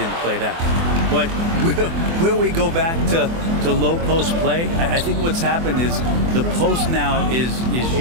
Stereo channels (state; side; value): late; left; 24 ms